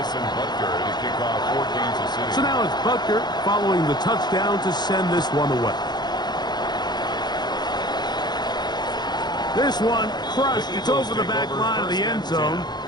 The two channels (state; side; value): late; right; 0.21 ms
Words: Butker to kick off for Kansas City. So now it's Butker following the touchdown to send this one away. This one crushed. It's over the back line of the end zone.